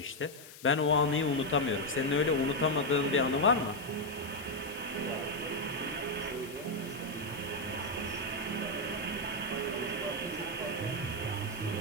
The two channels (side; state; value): left; noise; hiss, 17 dB below the sound